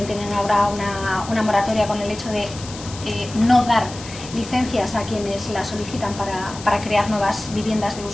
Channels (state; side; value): noise; left; hiss, 14 dB below the sound